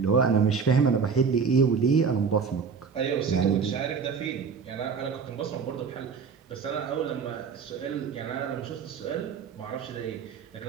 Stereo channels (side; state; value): left; quieter; 5.9 dB